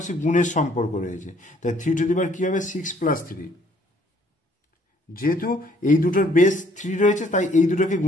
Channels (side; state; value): both; normal; correlation 0.63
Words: গুণের সম্পর্ক রয়েছে, তাই 3 কি হবে 6 + 3, যেহেতু এই দুটোর বেস 3 রয়েছে তাই এই দুটোকে